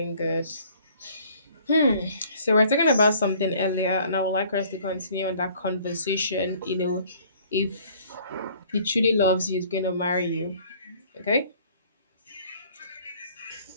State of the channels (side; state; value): both; inverted; correlation -0.56